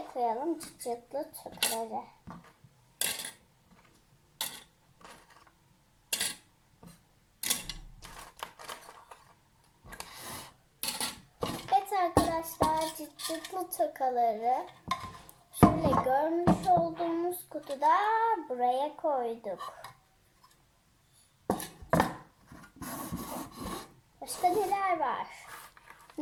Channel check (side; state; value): both; identical; correlation 1.00